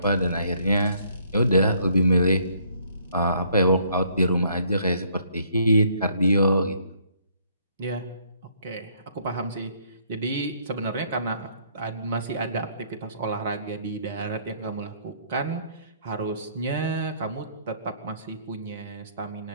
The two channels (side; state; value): both; inverted; correlation -0.65